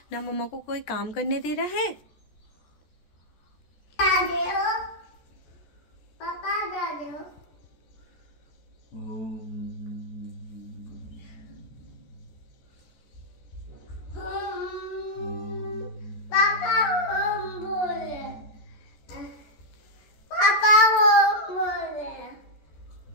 ना मम्मा को कोई काम करने दे रहा है। पापा दादे हो।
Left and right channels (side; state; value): right; late; 14 ms